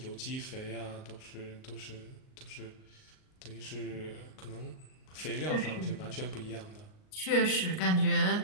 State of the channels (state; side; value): late; right; 38 ms